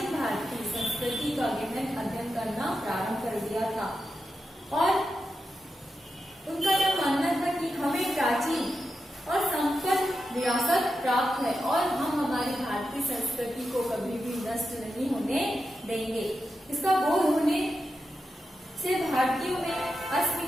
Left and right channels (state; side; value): normal; both; correlation 0.89